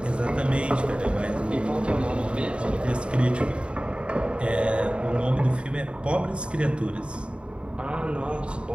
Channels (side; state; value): left; late; 0.056 ms